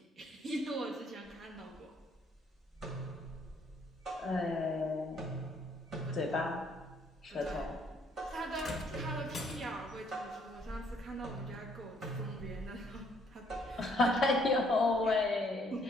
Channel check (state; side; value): normal; both; correlation 0.66